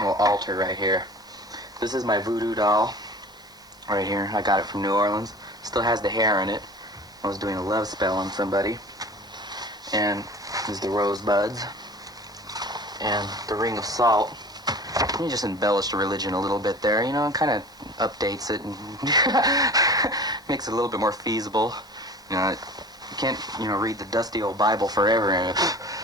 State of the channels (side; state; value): both; normal; correlation 0.41